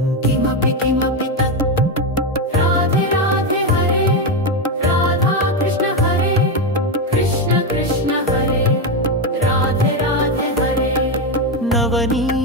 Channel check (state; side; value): normal; both; correlation 0.09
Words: किमपि किमपि तत् राधे राधे हरे राधा कृष्ण हरे कृष्ण कृष्ण हरे राधे राधे हरे